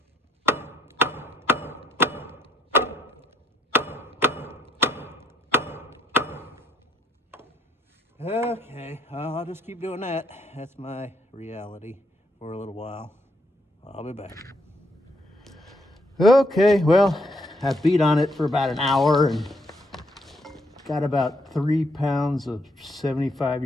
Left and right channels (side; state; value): both; normal; correlation 0.72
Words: Okay, I'll just keep doing that. That's my reality for a little while. I'll be back. Okay, well, I beat on it for about an hour and got about 3 pounds of